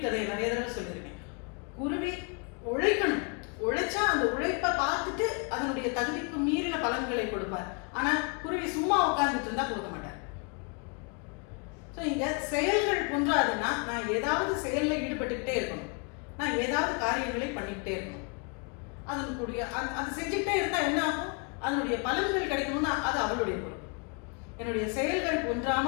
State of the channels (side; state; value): right; quieter; 35.8 dB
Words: நிறைய தடவை சொல்லியிருக்கேன். குருவி உழைக்கணும், உழைச்சா அந்த உழைப்பை பார்த்துட்டு அதனுடைய தகுதிக்கு மீறின பலன்களை கொடுப்பார். ஆனா குருவி சும்மா உட்கார்ந்துட்டு இருந்தா கொடுக்க மாட்டார். ஸோ இங்க செயல்கள் குன்றாதுன்னா நான் ஏதாவது செயல்ல ஈடுபட்டுக்கிட்டே இருக்கணும், நான் ஏதாவது காரியங்களை பண்ணிக்கிட்டே இருக்கணும். அதனுடைய அது செஞ்சுக்கிட்டே இருந்தா என்ன ஆகும்? அதனுடைய பலன்கள் கிடைக்கணும்னா அது அவளுடைய பொருள். என்னுடைய செயல்கள்